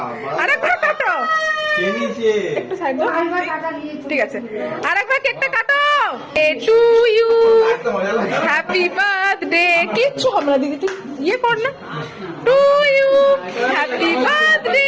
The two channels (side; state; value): both; identical; correlation 1.00